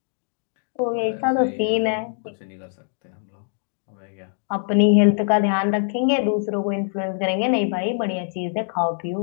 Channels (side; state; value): right; silent; digital silence